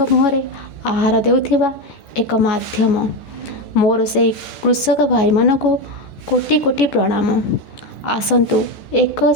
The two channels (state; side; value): late; right; 14 ms